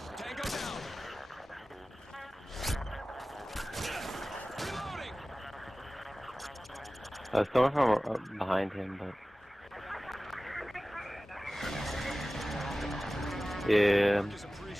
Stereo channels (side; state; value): both; normal; correlation 0.97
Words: Tango down. Reloading. I was coming from behind him, but yeah.